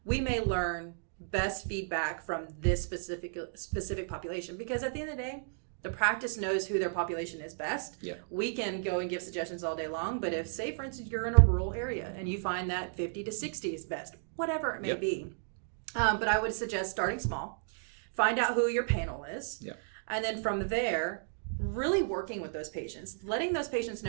we may learn best feedback from this specific population, because at the end of the day, The practice knows who their population is best. Yeah. We can go and give suggestions all day long, but if, say, for instance, you're in a rural area and you find that 50 to 60 is best, whatever it may be. But I would suggest starting small. Find out who your panel is. Yeah. And then from there, really working with those patients, letting those patients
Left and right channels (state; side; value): silent; left; digital silence